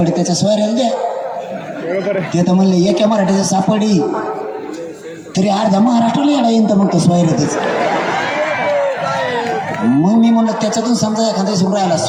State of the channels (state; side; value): identical; both; correlation 1.00